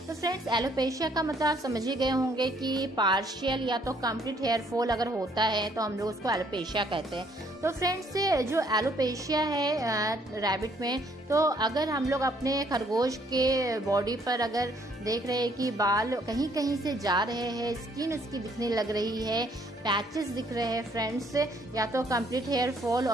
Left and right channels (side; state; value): both; normal; correlation 0.65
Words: तो फ्रेंड्स, एलोपेशिया का मतलब आप समझ ही गए होंगे कि पार्शियल या तो कंप्लीट हेयर फॉल अगर होता है तो हम लोग उसको एलोपेशिया कहते हैं। तो फ्रेंड्स, जो एलोपेशिया है रैबिट में, तो अगर हम लोग अपने खरगोश के बॉडी पर अगर देख रहे हैं कि बाल कहीं कहीं से जा रहे हैं, स्किन उसकी दिखने लग रही है, पैचेस दिख रहे हैं फ्रेंड्स, या तो कंप्लीट हेयर फॉल